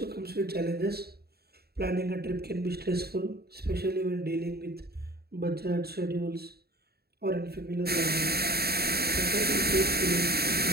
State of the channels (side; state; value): left; late; 0.46 ms